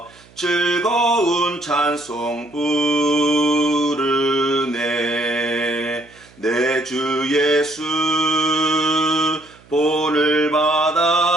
즐거운 찬송 부르네. 내 주 예수 본을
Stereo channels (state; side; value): noise; right; hum, 27 dB below the sound